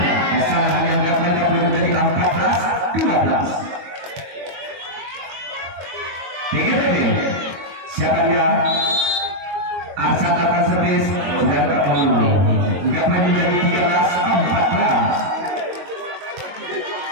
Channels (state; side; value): late; left; 22 ms